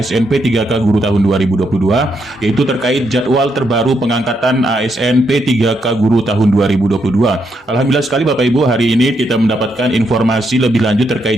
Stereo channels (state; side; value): normal; both; correlation 0.78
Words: P3K Guru tahun 2022, yaitu terkait jadwal terbaru pengangkatan ASN P3K Guru tahun 2022. Alhamdulillah sekali Bapak Ibu, hari ini kita mendapatkan informasi lebih lanjut